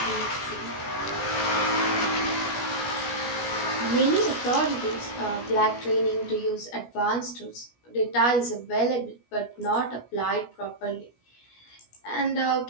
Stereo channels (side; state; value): right; late; 17 ms